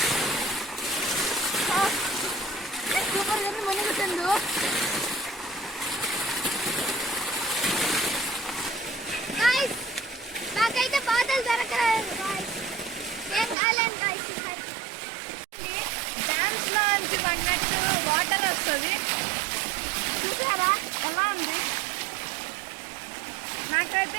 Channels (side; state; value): left; drops out; at 13.6 s